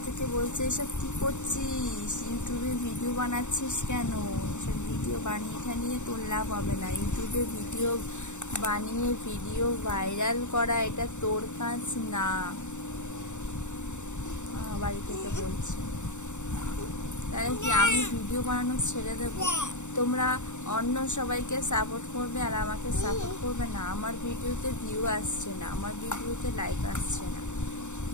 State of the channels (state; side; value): late; right; 0.84 ms